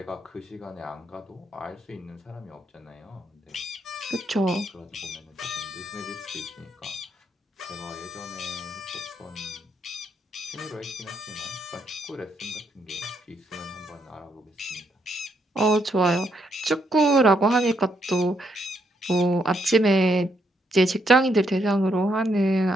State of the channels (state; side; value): normal; both; correlation 0.75